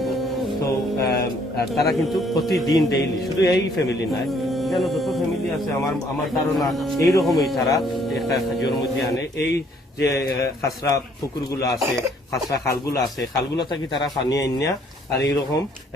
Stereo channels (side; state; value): both; normal; correlation 0.64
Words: তো তারা কিন্তু প্রতিদিন ডেইলি, শুধু এই ফ্যামিলি নয়, এখানে যত ফ্যামিলি আছে আমার ধারণা এইরকমই তারা একটা জিওর মধ্যে আনে। এই যে খাসরা পুকুরগুলো আছে, খাসরা খালগুলো আছে, খালগুলো থাকি তারা পানি আনিয়া আর এইরকম